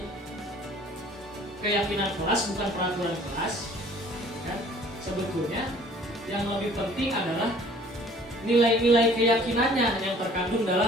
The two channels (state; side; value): normal; both; correlation 0.53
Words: keyakinan kelas bukan peraturan kelas? Ya, sebetulnya yang lebih penting adalah nilai-nilai keyakinannya yang terkandung